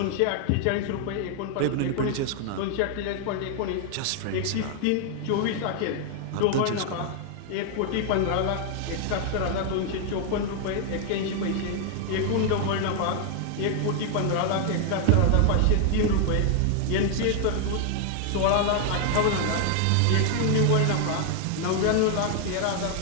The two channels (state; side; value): different; both; correlation 0.00